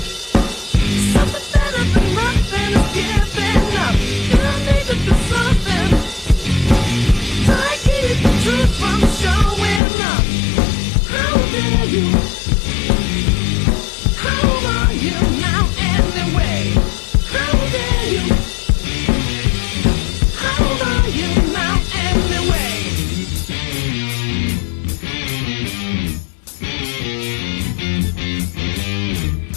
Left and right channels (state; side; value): drops out; right; at 9.8 s